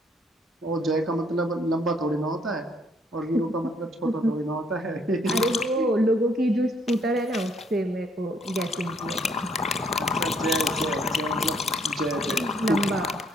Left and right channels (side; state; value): both; normal; correlation 0.67